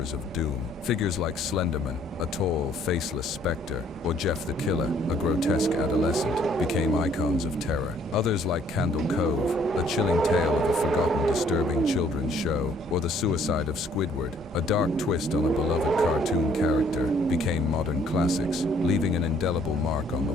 of doom. Figures like Slenderman, a tall, faceless specter, or Jeff the Killer, a grotesque adolescent, became icons of terror. Others like Candle Cove, a chilling tale of a forgotten, disturbing children's show, or The Suicide of Squidward, a dark twist on a beloved cartoon character, became modern classics, leaving an indelible mark on the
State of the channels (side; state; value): both; normal; correlation 0.62